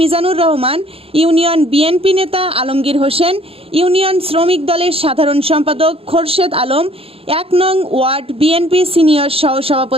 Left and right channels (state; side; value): late; left; 0.27 ms